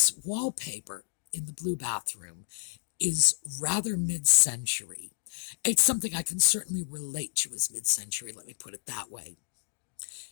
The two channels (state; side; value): silent; right; digital silence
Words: wallpaper in the blue bathroom is rather mid-century. It's something I can certainly relate to as mid-century, let me put it that way.